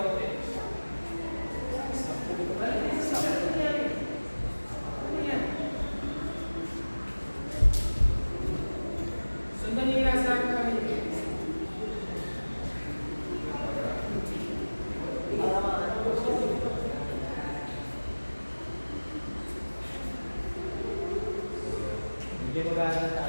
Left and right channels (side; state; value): both; inverted; correlation -1.00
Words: Ano yan? Sundan niyo yung nasa harapan kami. Hindi mo gano'n